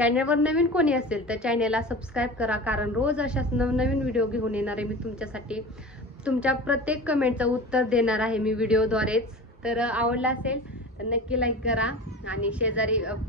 नवीन कोणी असेल तर चॅनलला सबस्क्राईब करा. कारण रोज अशाच नवनवीन व्हिडिओ घेऊन येणार आहे मी तुमच्यासाठी. तुमच्या प्रत्येक कमेंटचं उत्तर देणार आहे मी व्हिडिओद्वारेच. तर आवडला असेल तर नक्की लाईक करा. आणि शेजारी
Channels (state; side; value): normal; both; correlation 0.34